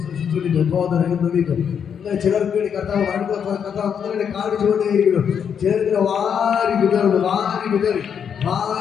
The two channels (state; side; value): quieter; right; 7.6 dB